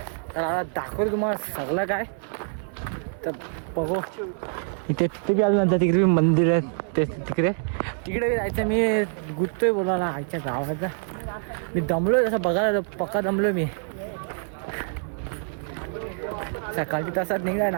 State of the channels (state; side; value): silent; left; 61 dB below the other